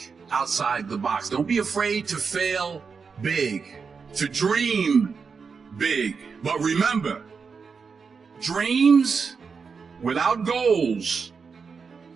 outside the box. Don't be afraid to fail big, to dream big. But remember, dreams without goals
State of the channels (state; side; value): quieter; left; 5.4 dB